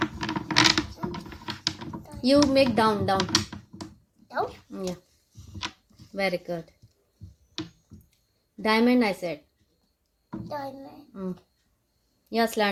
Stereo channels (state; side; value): identical; both; correlation 1.00